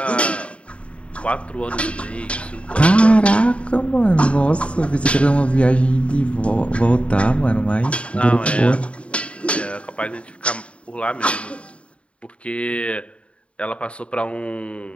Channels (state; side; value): late; right; 0.061 ms